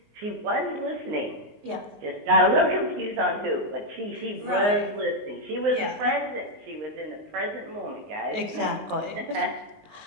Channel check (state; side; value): late; left; 19 ms